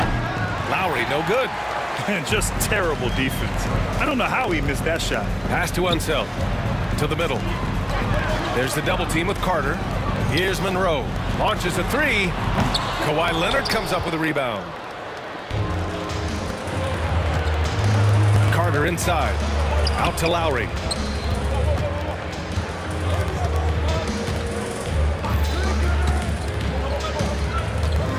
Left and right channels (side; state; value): both; identical; correlation 1.00